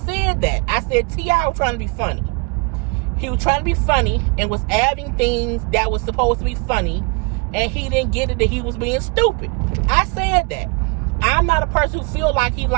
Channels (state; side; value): quieter; left; 30.6 dB